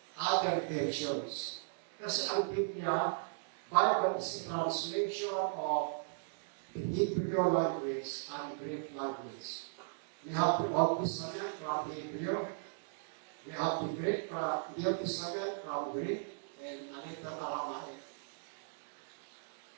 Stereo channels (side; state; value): left; silent; digital silence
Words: other versions. Kasi ang Biblia, Bible is a translation of the Hebrew language and Greek language. We have the Old Testament from Hebrew. We have the Greek from New Testament from Greek and a little Aramaic.